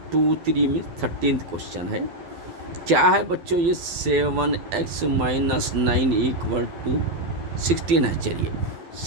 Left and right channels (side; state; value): left; late; 12 ms